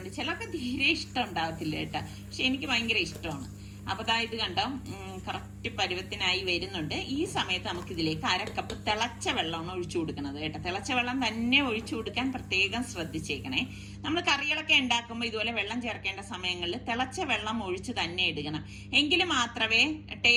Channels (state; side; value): identical; both; correlation 1.00